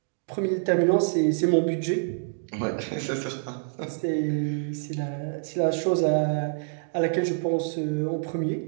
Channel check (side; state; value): left; silent; digital silence